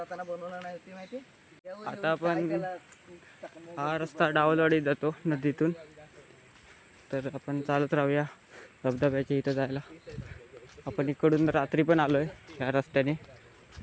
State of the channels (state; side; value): identical; both; correlation 1.00